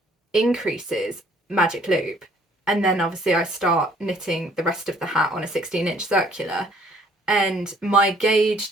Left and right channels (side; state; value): both; normal; correlation 0.60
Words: increases magic loop, and then obviously I start knitting the rest of the hat on a 16-inch circular, and my